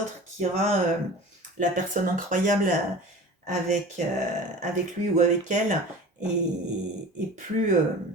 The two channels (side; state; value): both; normal; correlation 0.38